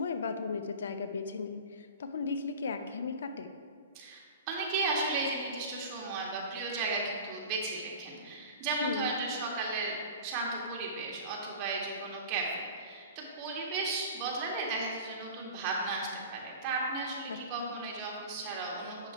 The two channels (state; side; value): inverted; both; correlation -0.35